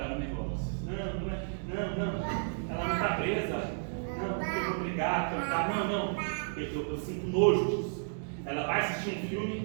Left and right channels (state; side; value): silent; left; digital silence